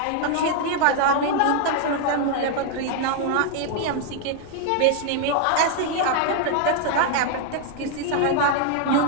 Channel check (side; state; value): both; different; correlation 0.00